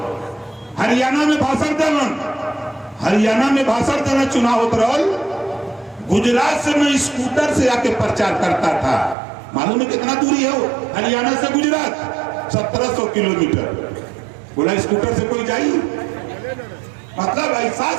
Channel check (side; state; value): left; drops out; at 9.2 s